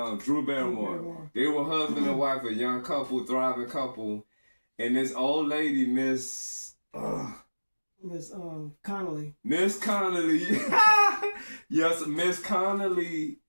and Drew Barrymore. They were husband and wife, a young couple, thriving couple. And this old lady, Miss Connolly. Miss Connolly. Yes, Miss Connolly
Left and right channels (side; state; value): both; inverted; correlation -1.00